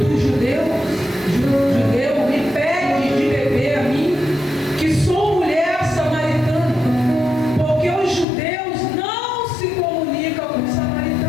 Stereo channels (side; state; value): right; drops out; at 8.2 s